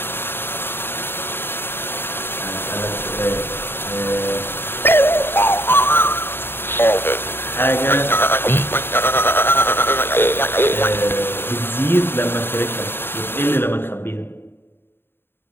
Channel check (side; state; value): right; late; 0.11 ms